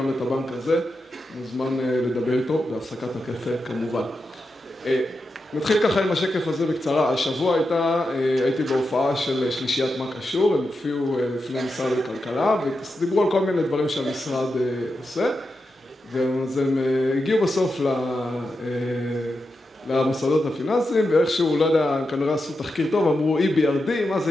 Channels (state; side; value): normal; both; correlation 0.88